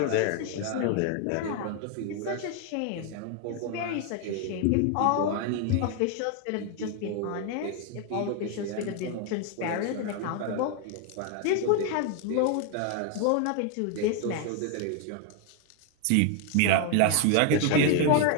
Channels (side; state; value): both; different; correlation 0.00